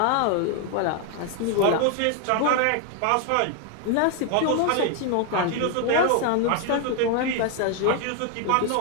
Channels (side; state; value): both; different; correlation 0.01